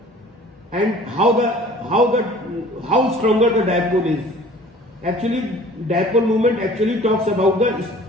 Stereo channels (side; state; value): both; normal; correlation 0.48